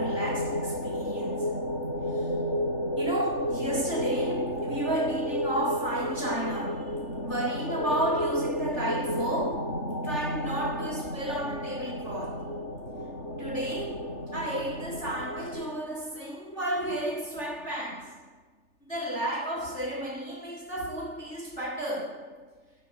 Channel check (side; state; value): right; late; 3.4 ms